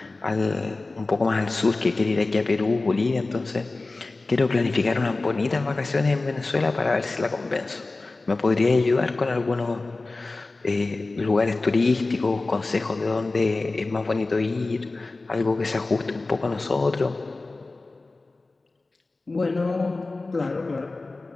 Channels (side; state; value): right; quieter; 3.3 dB